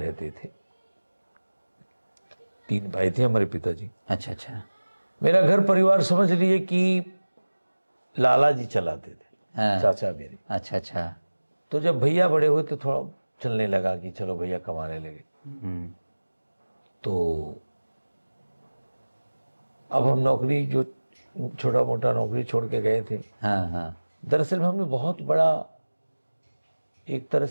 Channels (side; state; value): both; inverted; correlation -1.00